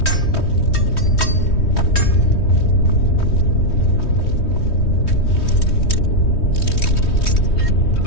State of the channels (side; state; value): right; late; 3.2 ms